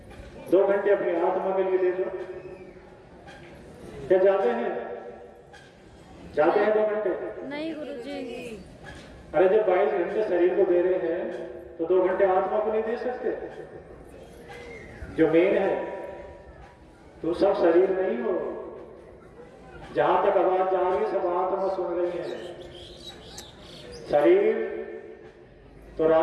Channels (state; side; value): identical; both; correlation 1.00